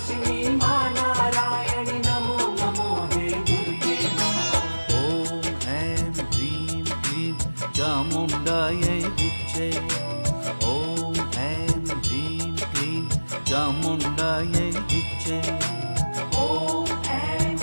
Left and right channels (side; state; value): both; inverted; correlation -1.00